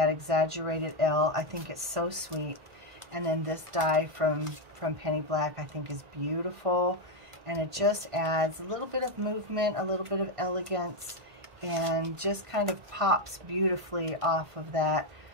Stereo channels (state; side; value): late; left; 1.5 ms